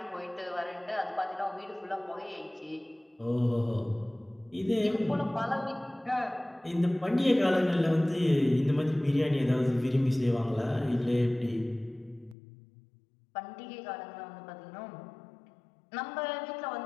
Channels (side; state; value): right; drops out; at 12.4 s